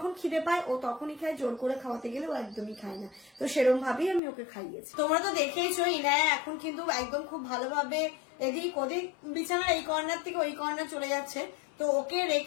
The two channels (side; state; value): right; drops out; at 4.2 s